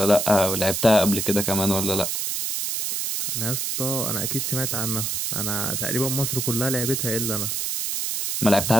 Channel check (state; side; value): noise; right; hiss, 1 dB below the sound